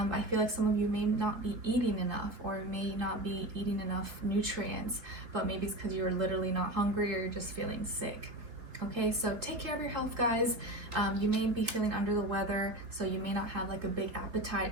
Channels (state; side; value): late; left; 4.0 ms